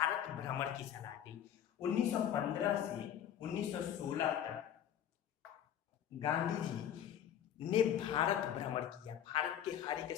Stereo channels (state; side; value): quieter; right; 10.0 dB